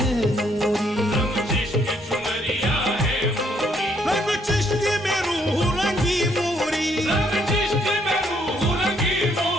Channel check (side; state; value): both; normal; correlation 0.70